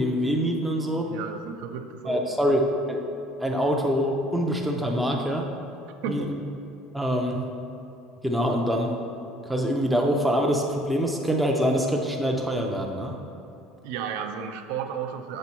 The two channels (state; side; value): normal; both; correlation 0.60